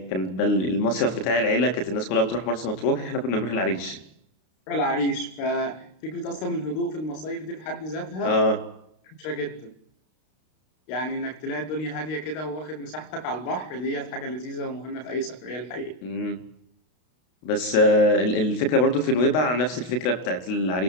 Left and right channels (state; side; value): late; right; 32 ms